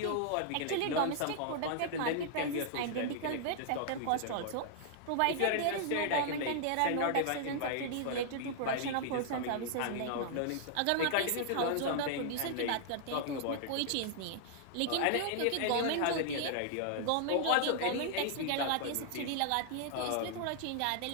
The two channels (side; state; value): both; different; correlation -0.01